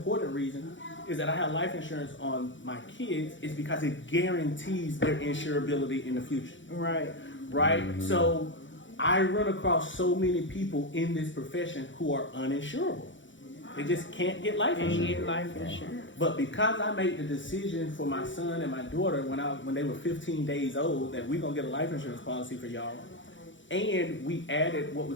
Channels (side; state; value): right; late; 0.55 ms